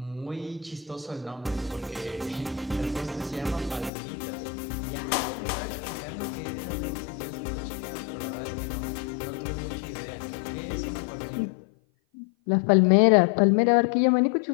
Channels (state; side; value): drops out; right; at 3.9 s